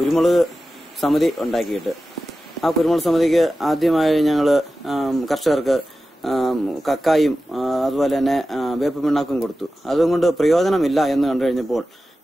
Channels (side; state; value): both; normal; correlation 0.94